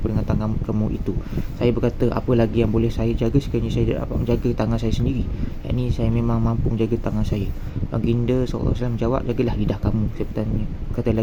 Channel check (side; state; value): both; identical; correlation 1.00